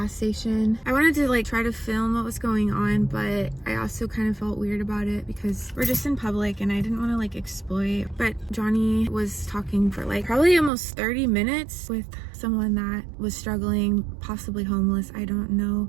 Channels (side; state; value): left; drops out; at 10.7 s